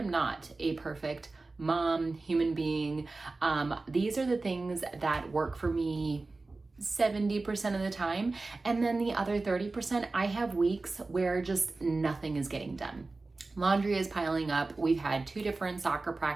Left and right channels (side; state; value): left; quieter; 3.5 dB